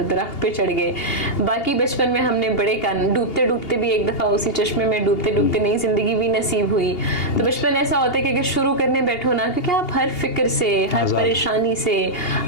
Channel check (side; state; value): right; late; 2.8 ms